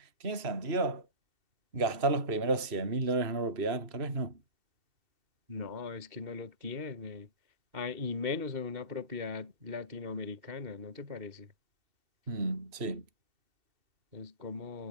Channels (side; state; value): left; late; 2.7 ms